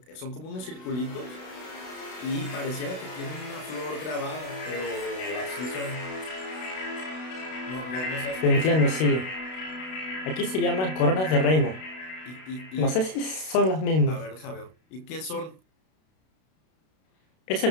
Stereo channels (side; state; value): right; late; 32 ms